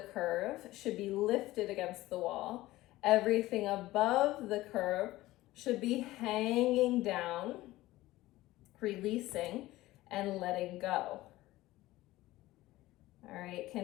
curve should be lifted against the wall. Everything above the curve should be hanging down, releasing and letting go. All right,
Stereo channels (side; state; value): right; quieter; 17.3 dB